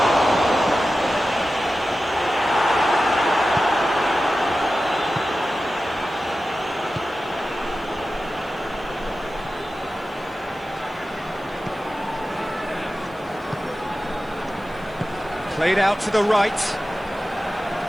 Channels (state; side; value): noise; right; hiss, 29 dB below the sound